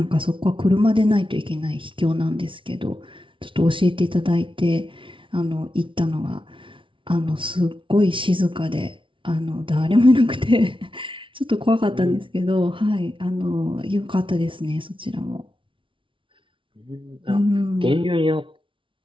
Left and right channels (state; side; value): late; left; 0.25 ms